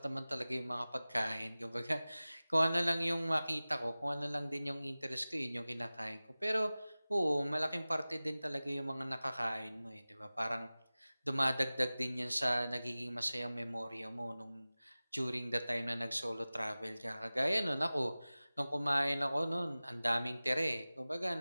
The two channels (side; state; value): both; inverted; correlation -0.98